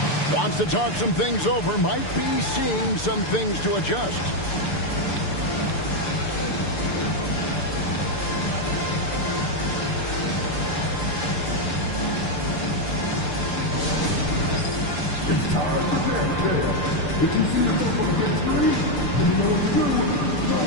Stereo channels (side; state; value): right; late; 6.8 ms